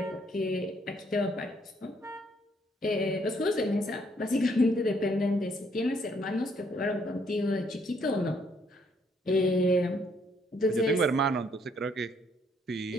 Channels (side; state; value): both; normal; correlation 0.68